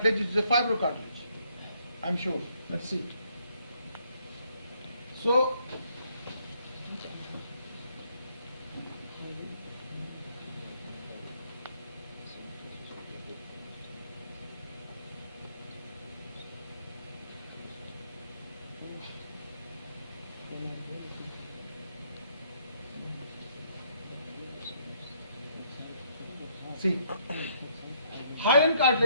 which is a fibrocartilage. I'm sure. Let's see. So, see, hyaline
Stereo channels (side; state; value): both; inverted; correlation -0.69